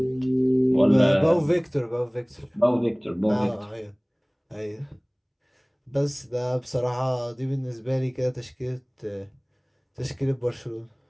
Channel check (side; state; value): both; identical; correlation 1.00